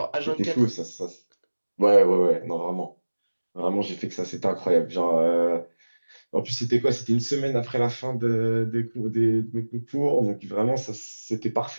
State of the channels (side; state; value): both; inverted; correlation -1.00